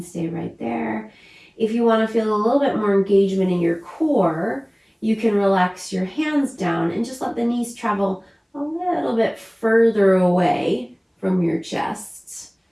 stay right there. If you want to feel a little bit more engagement in your core, you can relax your hands down and just let the knees travel a little bit further away from your chest,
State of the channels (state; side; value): identical; both; correlation 1.00